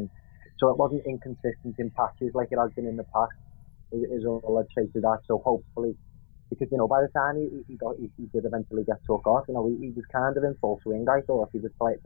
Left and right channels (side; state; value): right; silent; 59 dB below the other